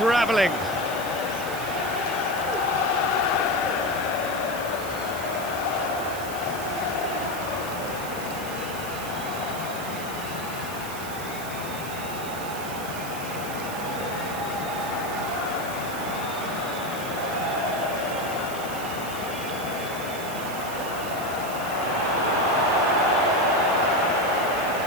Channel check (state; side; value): noise; right; hiss, 12 dB below the sound